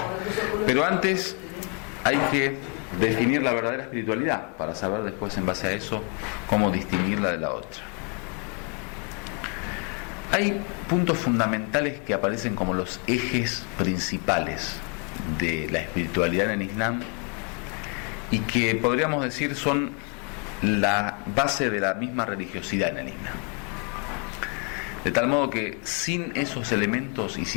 Pero antes hay que definir la verdadera espiritualidad para saber después, en base a eso, cómo distinguirla de la otra. Hay puntos fundamentales que aparecen como los ejes principales de la espiritualidad en el Islam y que podríamos decir son la base de la misma religiosidad en el Islam. De tal modo que sin esos elementos y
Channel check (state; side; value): quieter; right; 36.0 dB